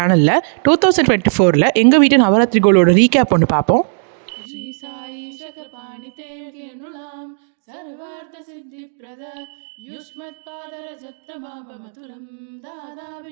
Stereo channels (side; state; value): left; silent; digital silence